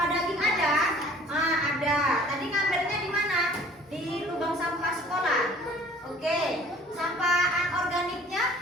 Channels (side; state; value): both; normal; correlation 0.52